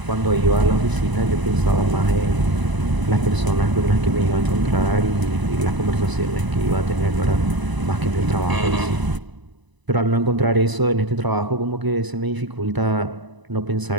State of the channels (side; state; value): left; late; 1.0 ms